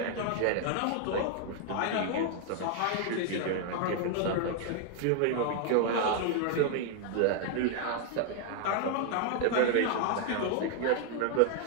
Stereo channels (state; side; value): different; both; correlation 0.00